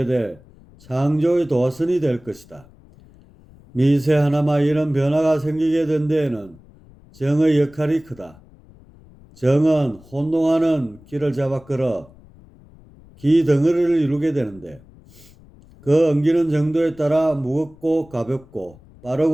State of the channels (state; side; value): noise; left; rumble, 25 dB below the sound